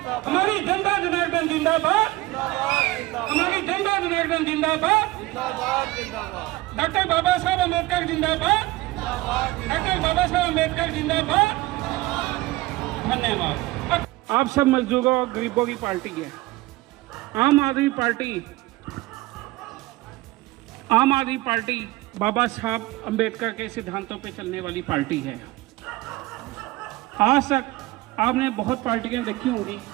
हमारी जनता जनार्दन जिंदाबाद, हमारी जनता जनार्दन जिंदाबाद, डॉक्टर बाबा साहब अम्बेडकर जिंदाबाद, डॉक्टर बाबा साहब अम्बेडकर जिंदाबाद। धन्यवाद। आप सब मजदूरों और गरीबों की पार्टी है। आम आदमी पार्टी बाबा साहब अम्बेडकर के सिद्धांतों पे चलने वाली पार्टी है। आज तक आपने बहुत पार्टियां देखी होंगी,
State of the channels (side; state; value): left; quieter; 19.4 dB